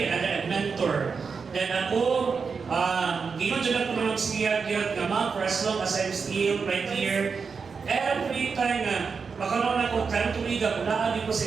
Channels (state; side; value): quieter; left; 5.4 dB